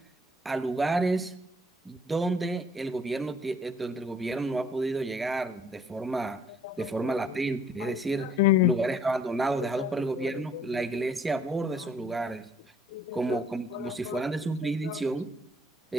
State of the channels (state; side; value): normal; both; correlation 0.60